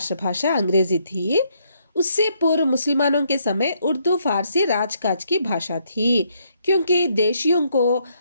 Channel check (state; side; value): inverted; both; correlation -0.72